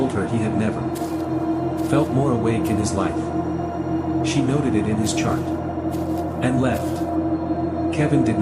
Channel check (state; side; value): identical; both; correlation 1.00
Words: her he had never felt more awake in his life. She noted it in his chart and left. Kevin did